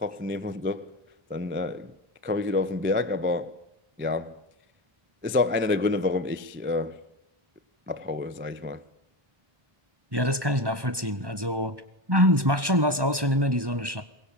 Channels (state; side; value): late; left; 1.1 ms